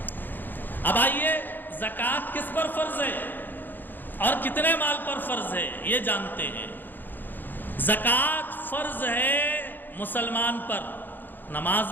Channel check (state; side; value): late; right; 0.090 ms